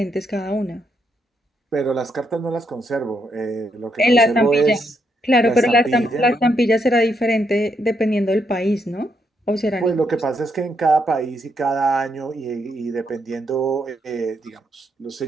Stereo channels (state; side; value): normal; both; correlation 0.77